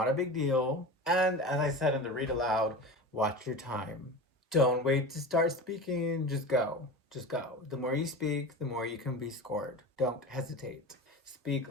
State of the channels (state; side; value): normal; both; correlation 0.30